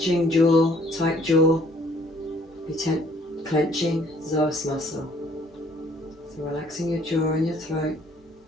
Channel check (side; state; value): both; normal; correlation 0.61